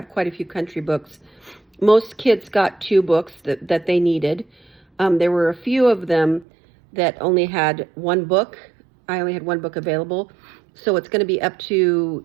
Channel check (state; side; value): drops out; left; at 6.5 s